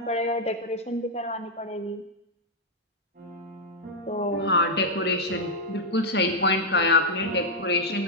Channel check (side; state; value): both; normal; correlation -0.02